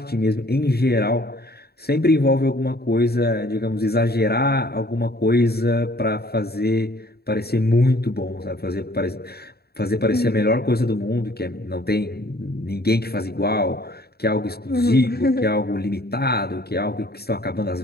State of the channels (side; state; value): right; late; 0.46 ms